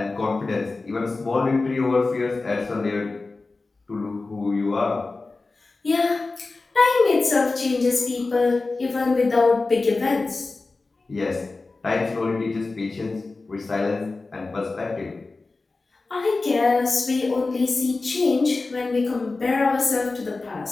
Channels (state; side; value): quieter; right; 3.6 dB